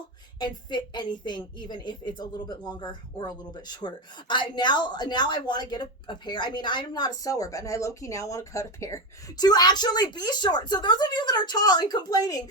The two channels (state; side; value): normal; both; correlation 0.14